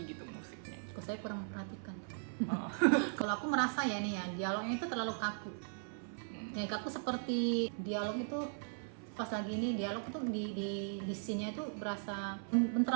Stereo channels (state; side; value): silent; left; 52 dB below the other